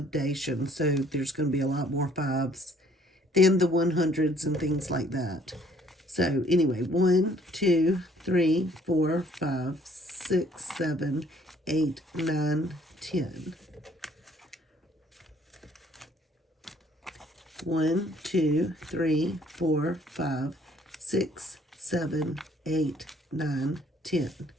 so there's going to be a lot more fives than the 100s and things like that. So anyway, 1, 2, 3, 4, 5, 6, 7, 8, 9, 10. 1, 2, 3, 4, 5, 6, 7, 8, 9, 10.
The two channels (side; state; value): both; normal; correlation 0.60